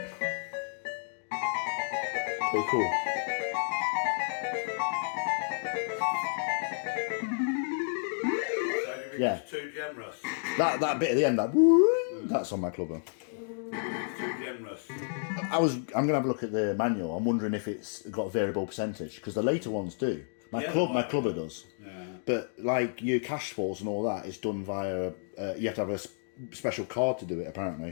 Pretty cool. Yeah. Too generous. That bit at the end, that's on my clubber. Too generous. I'm gonna have a look at the manual. I'm wondering if it's got a variable percentage, because the later ones do. My clubber does. Yeah. But like your cash falls and all that is done via. You have to have a special card to do it,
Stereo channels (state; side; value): silent; right; digital silence